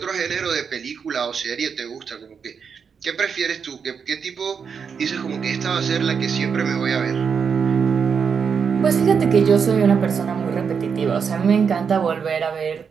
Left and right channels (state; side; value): quieter; left; 6.4 dB